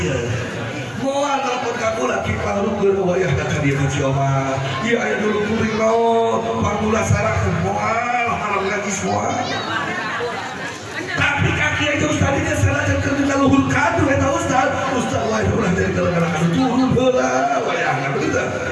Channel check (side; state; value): both; identical; correlation 1.00